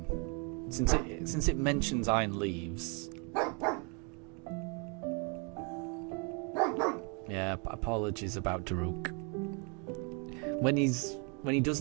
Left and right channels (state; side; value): quieter; left; 35.0 dB